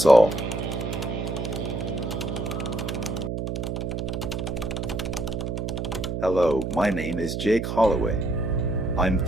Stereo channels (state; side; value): noise; right; hum, 3 dB below the sound